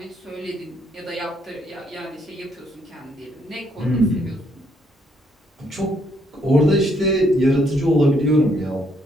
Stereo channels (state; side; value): normal; both; correlation 0.71